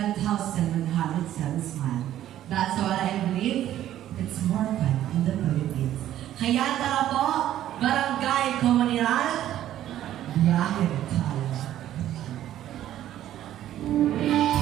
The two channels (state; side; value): quieter; left; 12.4 dB